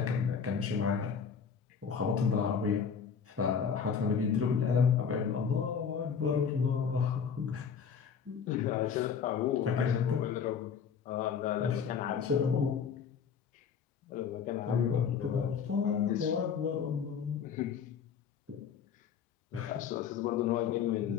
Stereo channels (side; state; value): right; quieter; 6.8 dB